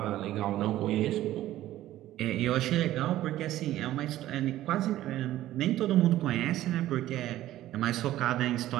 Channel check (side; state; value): left; quieter; 14.3 dB